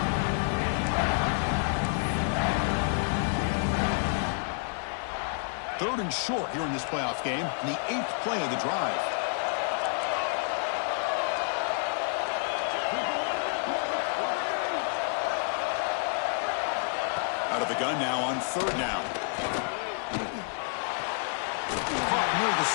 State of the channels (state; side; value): silent; right; 58 dB below the other